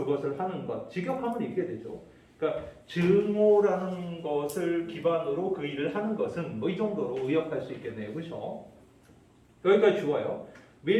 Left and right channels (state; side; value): identical; both; correlation 1.00